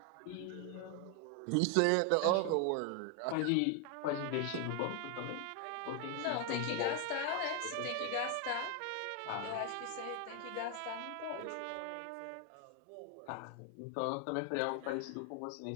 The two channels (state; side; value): different; both; correlation 0.00